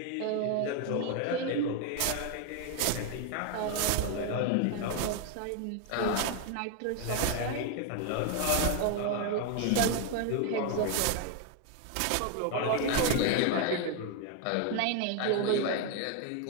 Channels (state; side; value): different; both; correlation 0.01